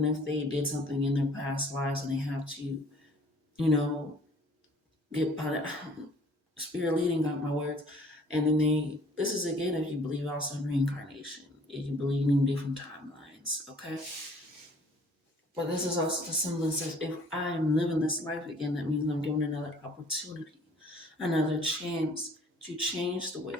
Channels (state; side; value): normal; both; correlation 0.55